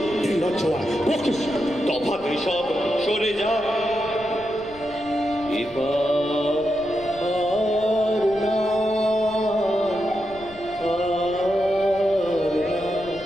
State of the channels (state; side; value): noise; left; rumble, 20 dB below the sound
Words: তফাতে সব সরে যা। এবার আর না, আর না,